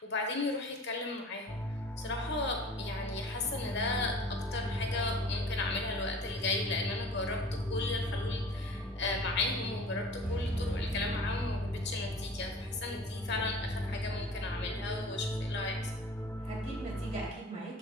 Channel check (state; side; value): normal; both; correlation 0.44